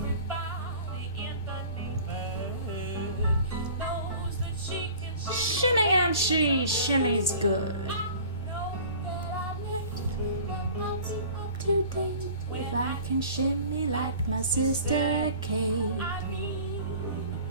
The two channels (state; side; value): inverted; both; correlation -0.44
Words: in the neighborhood knows that she can shimmy and she shimmy's good. Today, if I can shimmy like my sister Kate,